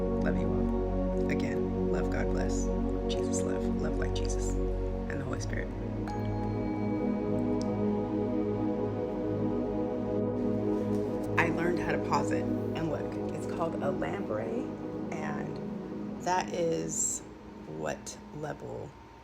Love you all. Again, love, God bless. Jesus love. Love like Jesus. And the Holy Spirit. I learned how to pause it. And look, it's called a lamprey. And that is what level?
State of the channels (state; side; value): identical; both; correlation 1.00